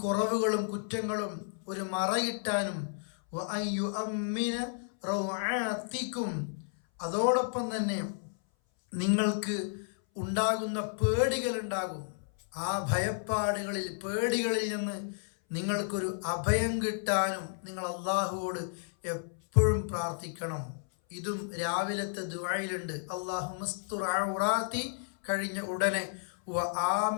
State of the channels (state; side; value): silent; right; 56 dB below the other